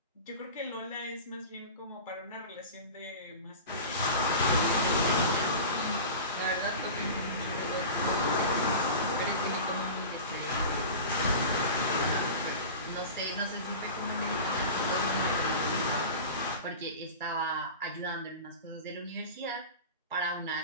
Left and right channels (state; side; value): inverted; both; correlation -0.32